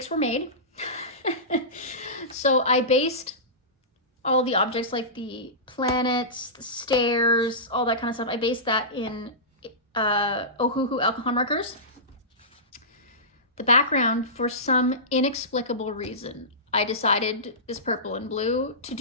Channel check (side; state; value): both; normal; correlation -0.19